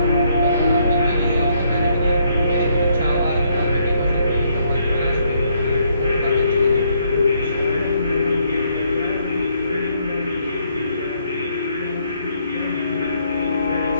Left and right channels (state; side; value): inverted; both; correlation -0.71